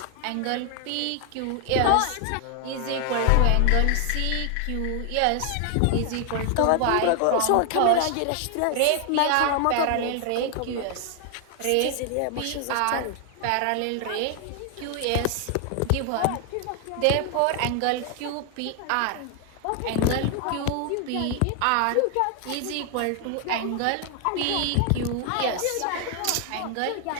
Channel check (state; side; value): different; both; correlation 0.00